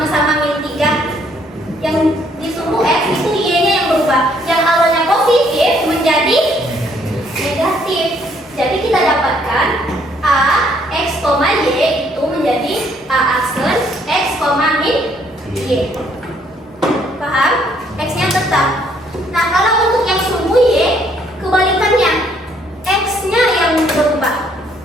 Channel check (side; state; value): both; normal; correlation 0.66